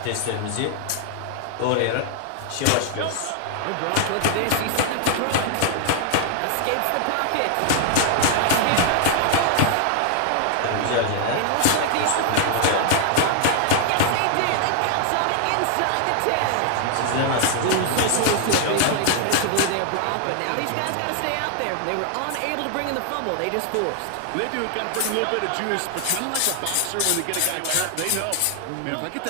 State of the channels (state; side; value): different; both; correlation 0.00